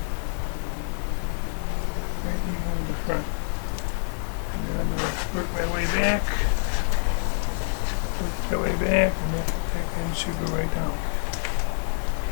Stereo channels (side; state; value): right; silent; digital silence